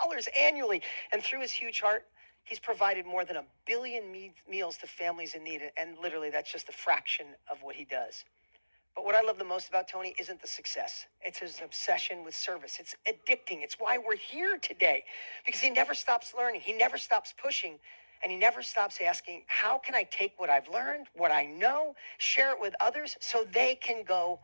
annually. And through his huge heart, he's provided more than 1 billion meals to families in need. And literally, that's just a fraction of what he does. But what I love the most about Tony isn't the success. It's his obsession with service. It's addicting. It's why we're here today, because he never stops learning. He never stops pushing, and he never stops asking, how can I take what I've learned, what I know, share it with others so they can go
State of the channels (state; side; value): inverted; both; correlation -1.00